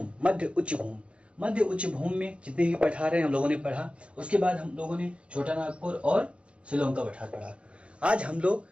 मध्य उच्च भूमि। मध्य उच्च भूमि में जितने भी पठार हैं हम लोगों ने पढ़ा। उसके बाद हम लोगों ने छोटा नागपुर और शिलोंग का पठार पढ़ा। आज हम लोग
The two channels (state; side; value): late; left; 0.059 ms